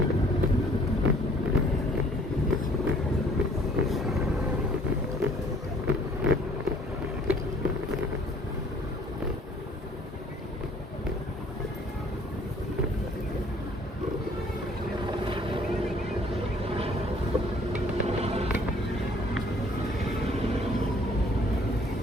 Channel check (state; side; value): normal; both; correlation 0.57